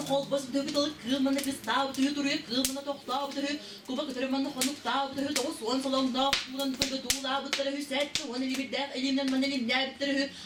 kol basıp dövü dalık, kılmanı kız tabi tüyü duruyor, kılmanı tok tabi tüyü. Kuba kıtırmanı konuk tabi tüyü, doğu soğan salonda, bulan tüyü tuğla bıttırı hüsetti. Onu bir def, elimden man elimden bittiri.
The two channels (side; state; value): both; identical; correlation 1.00